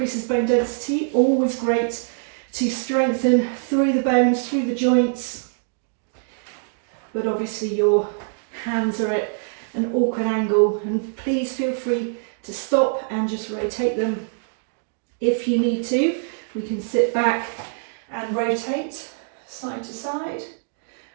bone density, always great to strengthen through the bones, through the joints, but obviously your hands are at an awkward angle, and please feel free to stop and just rotate them if you need to. We can sit back and rotate side to side,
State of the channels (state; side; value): silent; left; digital silence